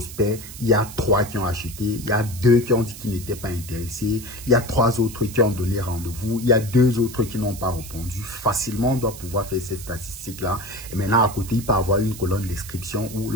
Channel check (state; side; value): noise; right; hiss, 14 dB below the sound